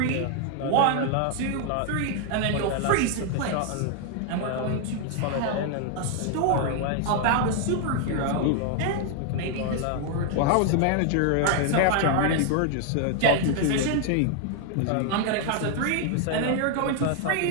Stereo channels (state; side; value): different; both; correlation 0.00